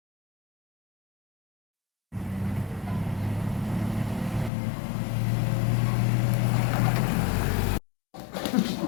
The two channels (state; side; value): drops out; right; at 4.5 s